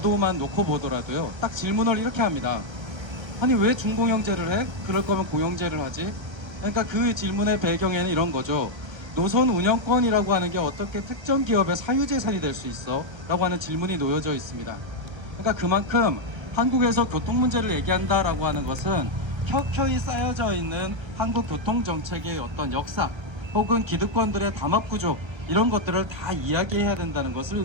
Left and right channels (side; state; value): left; late; 1.3 ms